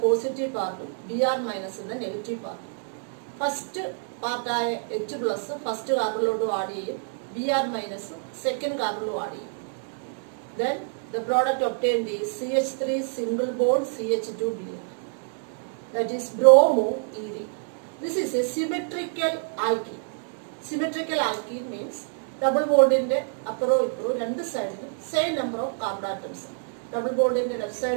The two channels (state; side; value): silent; left; 60 dB below the other